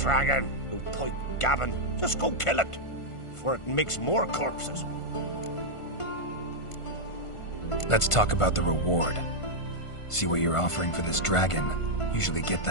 No point gabbing. Just go kill it, for it makes more corpses. Let's talk about the reward. See what you're offering for this dragon. Usually get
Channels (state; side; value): late; right; 1.5 ms